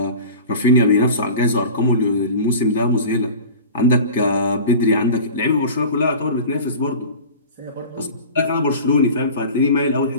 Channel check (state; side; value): inverted; both; correlation -0.37